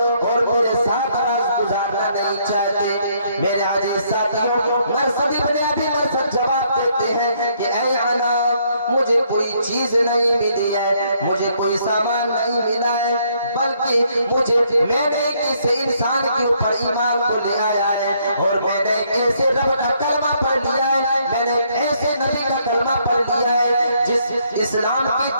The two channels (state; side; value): inverted; both; correlation -0.69